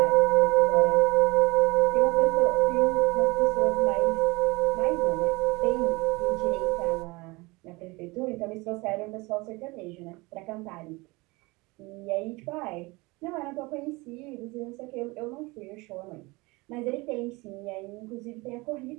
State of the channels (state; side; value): quieter; left; 24.1 dB